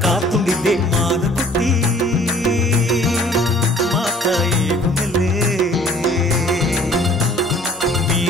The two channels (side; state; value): both; normal; correlation 0.53